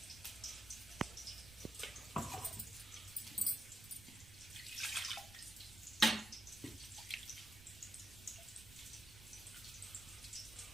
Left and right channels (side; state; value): right; noise; rumble, 16 dB below the sound